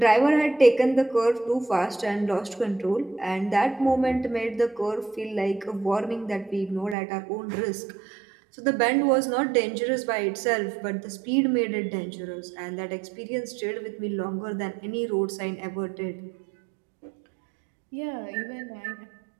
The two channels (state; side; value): drops out; left; at 7.0 s